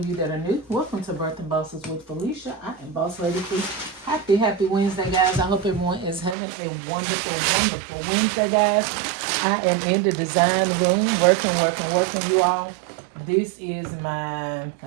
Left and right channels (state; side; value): drops out; left; at 6.4 s